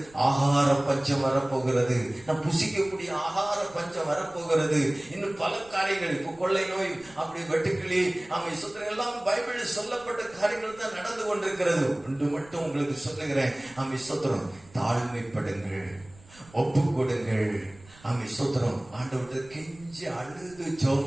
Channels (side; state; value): right; noise; rumble, 24 dB below the sound